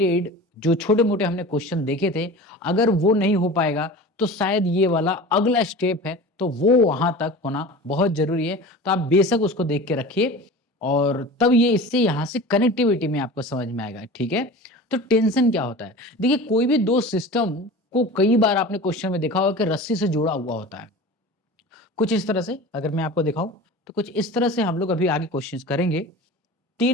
जो छोटे मोटे हमने क्वेश्चन देखे थे, अगर वो नहीं हो पाएगा तो शायद ये वाला अगला स्टेप है तो वो वहां तक होना बहुत जरूरी है। तो आप बेशक उसको देख के रखिए और तब ये इससे यहां से कनेक्टिविटी में आपको समझ में आएगा। ठीक है, तो टेंशन क्या होता है? देखिए कोई भी दो सिस्टम को कई बार आपने क्वेश्चन में देखा होगा कि रस्सी से जुड़ा हुआ होता है। कुछ इस तरह से अगर मैं आपको दिखाऊं तो कुछ इस तरह से हम लोग अभी आगे क्वेश्चंस करेंगे।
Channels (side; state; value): both; normal; correlation 0.36